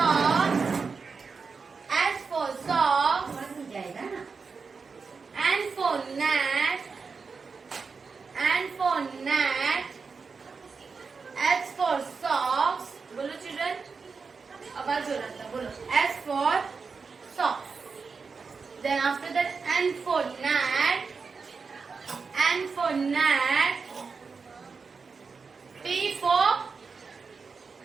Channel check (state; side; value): quieter; left; 5.0 dB